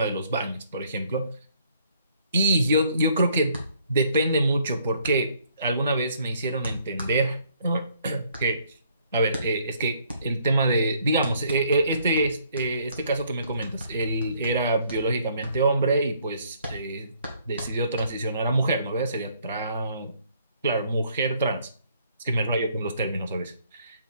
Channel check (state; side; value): inverted; both; correlation -0.65